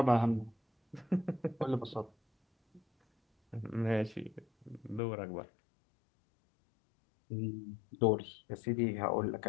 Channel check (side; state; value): right; drops out; at 5.0 s